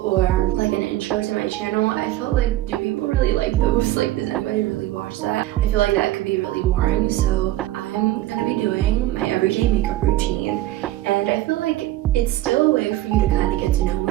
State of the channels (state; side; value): quieter; left; 15.3 dB